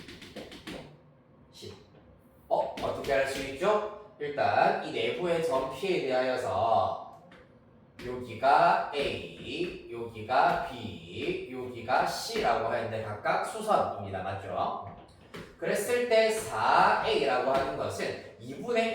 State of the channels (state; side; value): identical; both; correlation 1.00